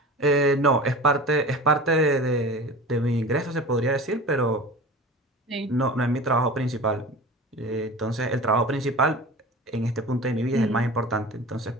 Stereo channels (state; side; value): normal; both; correlation 0.35